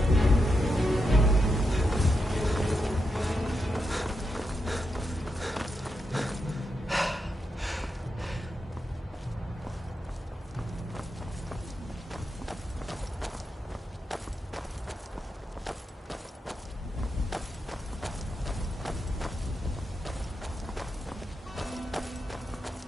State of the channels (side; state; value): both; normal; correlation 0.85